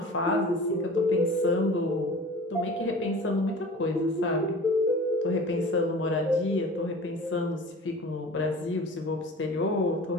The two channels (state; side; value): normal; both; correlation 0.40